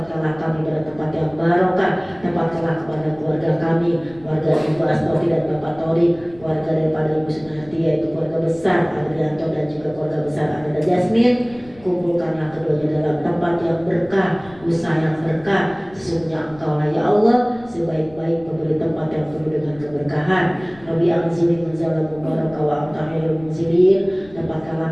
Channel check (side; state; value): left; noise; rumble, 23 dB below the sound